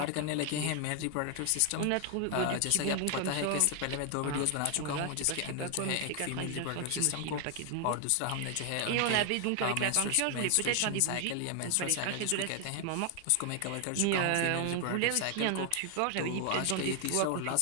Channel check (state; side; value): different; both; correlation 0.00